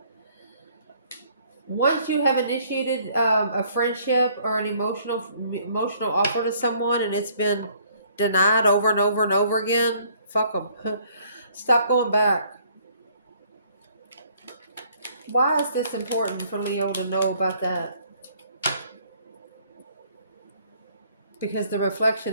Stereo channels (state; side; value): inverted; both; correlation -0.62